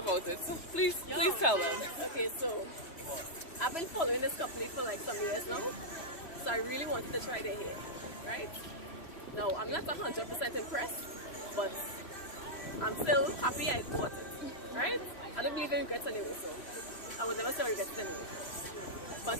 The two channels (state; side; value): late; right; 3.1 ms